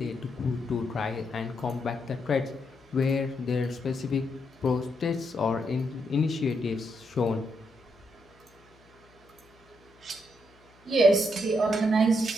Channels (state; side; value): noise; left; hum, 29 dB below the sound